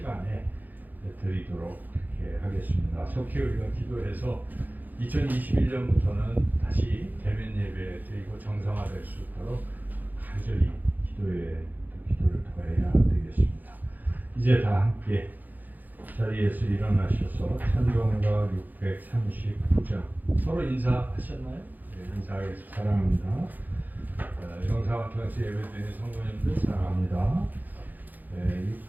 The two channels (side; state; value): left; late; 0.084 ms